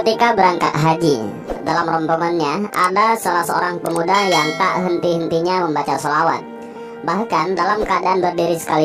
berangkat haji. Dalam rombongannya ada salah seorang pemuda yang tak henti-hentinya membaca salawat. Bahkan dalam keadaan berdiri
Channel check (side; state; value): both; identical; correlation 1.00